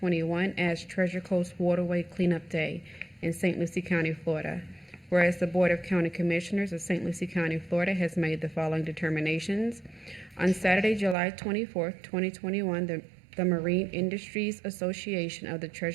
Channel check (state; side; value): drops out; left; at 11.2 s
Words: as Treasure Coast Waterway Cleanup Day in St. Lucie County, Florida. Whereas the Board of County Commissioners of St. Lucie County, Florida has made the following determinations. On Saturday, July 24th, 2021, the Marine Industries Association of the